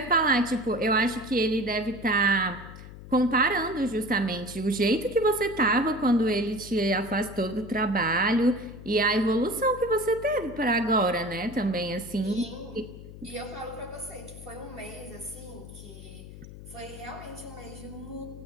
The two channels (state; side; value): noise; left; hum, 15 dB below the sound